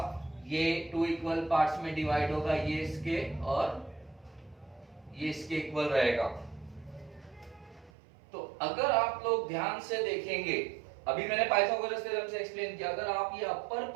ये टू इक्वल पार्ट्स में डिवाइड होगा, ये इसके और ये इसके इक्वल रहेगा। तो अगर आप लोग ध्यान से देखेंगे, अभी मैंने पाइथागोरस थ्योरम से एक्सप्लेन किया, अगर आप ये अपर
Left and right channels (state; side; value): drops out; left; at 7.9 s